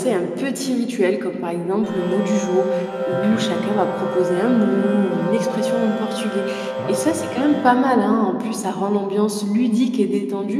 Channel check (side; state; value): both; identical; correlation 1.00